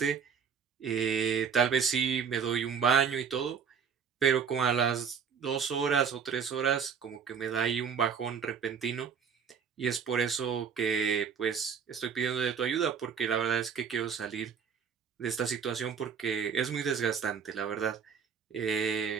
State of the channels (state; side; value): quieter; left; 6.7 dB